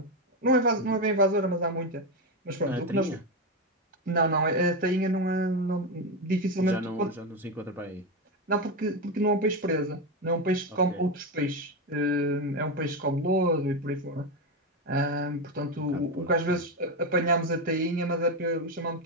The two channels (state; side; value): normal; both; correlation 0.12